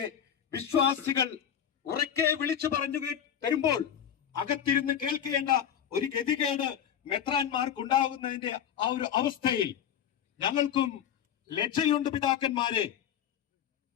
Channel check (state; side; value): quieter; right; 9.2 dB